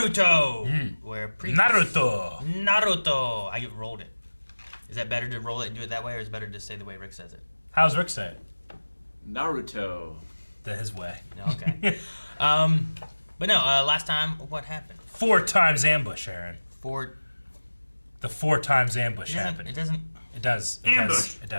Naruto. I rolled it. Is that better to roll it and do it that way, or is it better to say the way Rick says it? How's Rick say it? Naruto. His way. Okay. But no, last time, what happened? 4 times ambush, Aaron. The 4 times ambush happened. It doesn't. It does. Ambush. It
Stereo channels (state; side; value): inverted; both; correlation -1.00